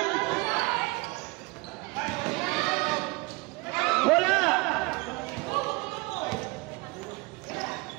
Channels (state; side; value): quieter; left; 24.9 dB